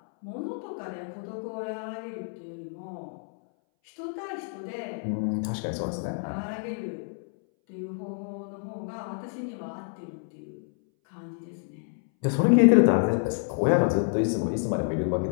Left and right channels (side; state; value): right; silent; 59 dB below the other